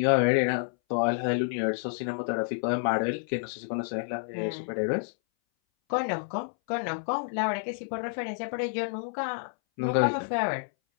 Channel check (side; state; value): right; silent; 59 dB below the other